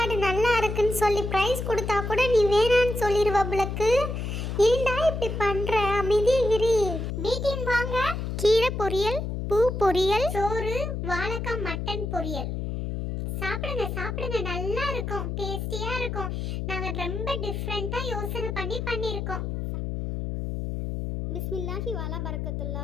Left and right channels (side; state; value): left; noise; hum, 3 dB below the sound